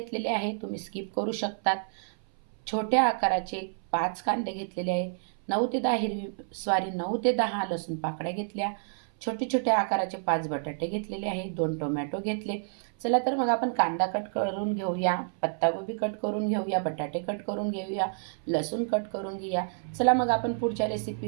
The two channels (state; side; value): silent; left; 58 dB below the other